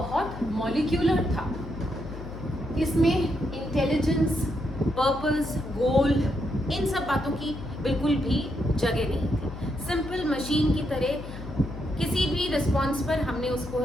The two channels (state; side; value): noise; left; hum, 11 dB below the sound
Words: मॉलिक्यूलर था. इसमें इंटेलिजेंस, पर्पस, गोल, इन सब बातों की बिल्कुल भी जगह नहीं थी. सिंपल मशीन की तरह किसी भी रिस्पॉन्स पर हमने उसको